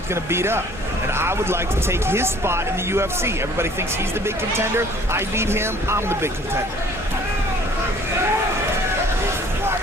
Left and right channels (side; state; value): both; normal; correlation 0.54